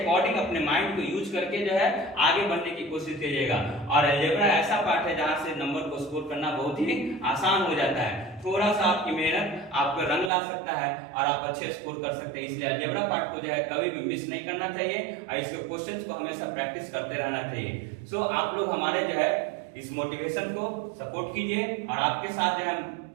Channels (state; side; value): drops out; left; at 10.3 s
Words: अपने माइंड को यूज करके जो है आगे बढ़ने की कोशिश कीजिएगा। और अलजेब्रा ऐसा पार्ट है जहां से नंबर को स्कोर करना बहुत ही आसान हो जाता है। थोड़ा सा आपकी मेहनत आपको रंग ला सकता है और आप अच्छे स्कोर कर सकते हैं। इसलिए अलजेब्रा पार्ट को जो है कभी भी मिस नहीं करना चाहिए और इसके क्वेश्चंस को हमेशा प्रैक्टिस करते रहना चाहिए। सो आप लोग हमारे जो है इस मोटिवेशन को सपोर्ट कीजिए और आपके साथ जो हम